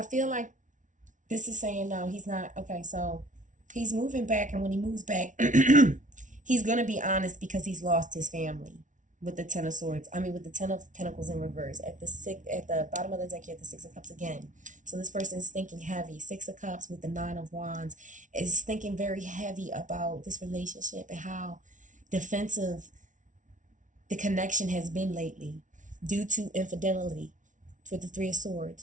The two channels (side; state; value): left; late; 0.37 ms